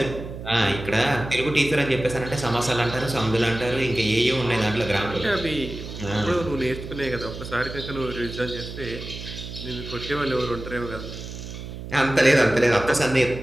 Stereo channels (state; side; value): noise; right; hum, 10 dB below the sound